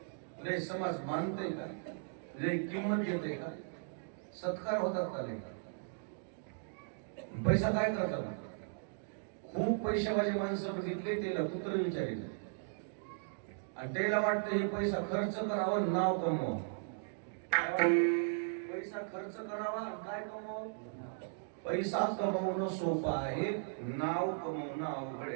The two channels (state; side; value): silent; left; digital silence